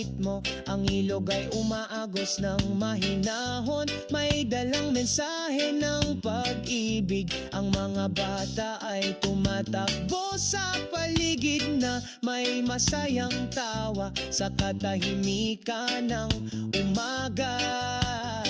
ang ilog ay umaagos ng mahinahon, may dalang mensahe ng pag-ibig. Ang mga bata ay tumatakbo sa paligid na may masayang tawa sa katahimikan ng umaga.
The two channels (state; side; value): identical; both; correlation 1.00